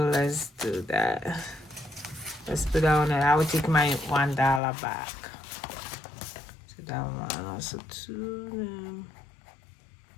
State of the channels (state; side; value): drops out; right; at 4.6 s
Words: let's do that. Let's put that on it. I will take my $1 back. So that one also 2.